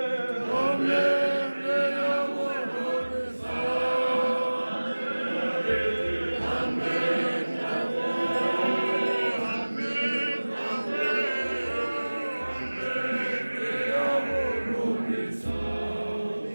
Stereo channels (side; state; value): both; inverted; correlation -1.00